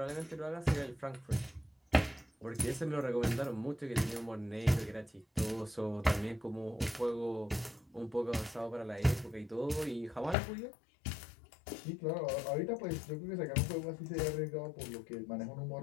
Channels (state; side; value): drops out; right; at 10.4 s